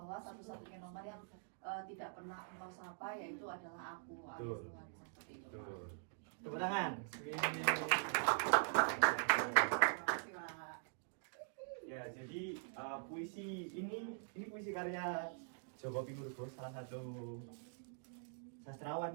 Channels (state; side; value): silent; left; digital silence